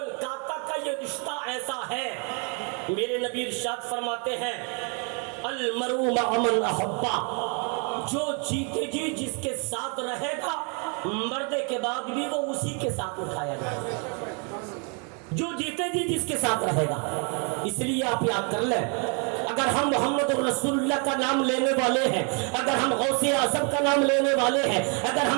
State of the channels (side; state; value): left; quieter; 36.9 dB